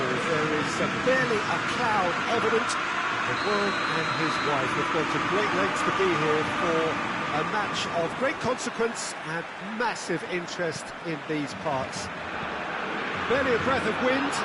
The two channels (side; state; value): both; identical; correlation 1.00